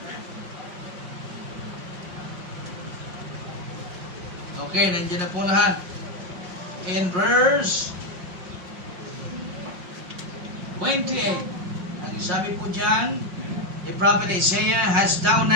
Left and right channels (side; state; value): left; late; 5.5 ms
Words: Okay, nandiyan na po lahat. In verse 28, ang sabi po dyan, the prophet Isaiah, "Hast thou